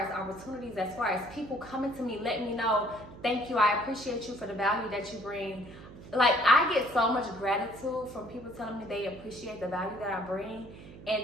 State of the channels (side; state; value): right; noise; hum, 16 dB below the sound